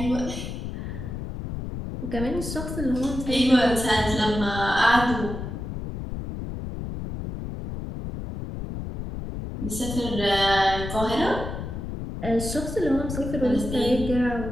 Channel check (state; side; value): noise; left; rumble, 7 dB below the sound